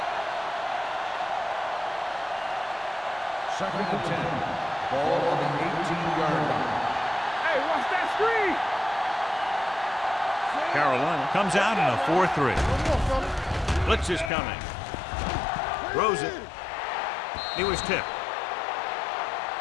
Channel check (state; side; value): drops out; right; at 14.3 s